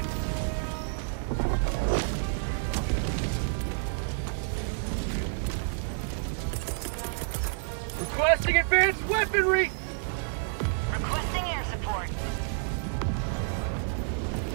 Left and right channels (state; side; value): silent; left; digital silence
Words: Requesting advanced weaponry! Requesting air support.